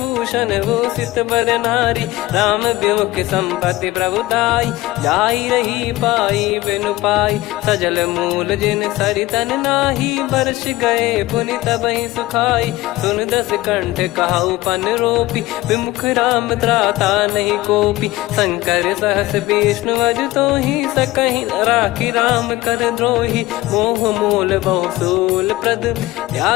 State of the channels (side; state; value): right; quieter; 18.2 dB